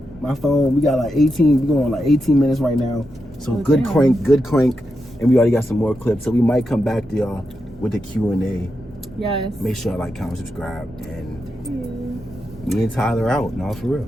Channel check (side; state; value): both; normal; correlation 0.87